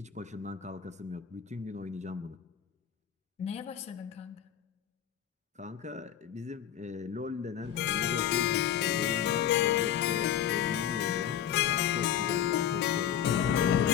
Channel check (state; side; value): quieter; right; 10.0 dB